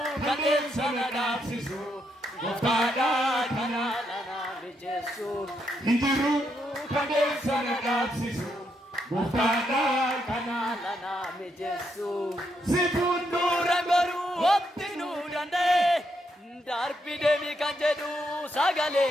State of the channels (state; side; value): normal; both; correlation 0.79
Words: kadem sana nasisu gofada kanala nami Yesu injiru kadem sana nasisu gofada kanala nami Yesu sibundura garu ottinu dande darbi demi kanjedu